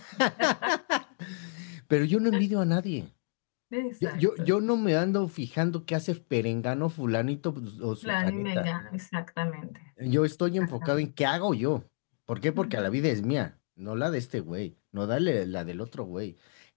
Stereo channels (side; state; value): right; silent; 58 dB below the other